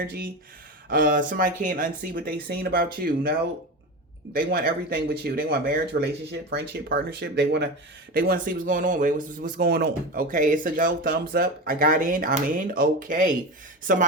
somebody can't unsee what they seen about you. No, they want everything with you. They want marriage, relationship, friendship, partnership. They want to see what's going on. Wait, what's going on? Okay, it's a go. Thumbs up. I got in. I'm in. Okay.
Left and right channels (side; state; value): both; normal; correlation 0.24